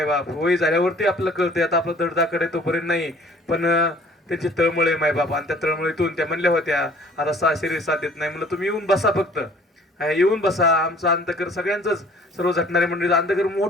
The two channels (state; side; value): normal; both; correlation 0.53